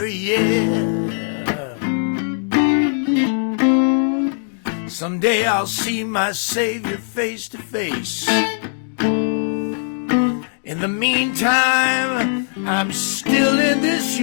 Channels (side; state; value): right; silent; digital silence